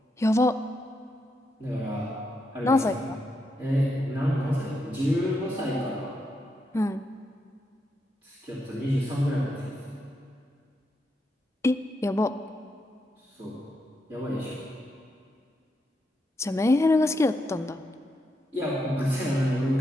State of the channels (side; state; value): both; normal; correlation 0.82